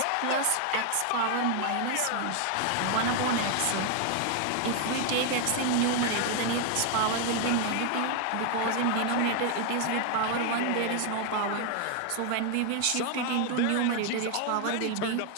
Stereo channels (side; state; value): both; different; correlation 0.00